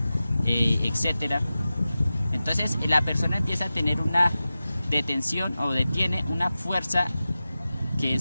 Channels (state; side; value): inverted; both; correlation -0.95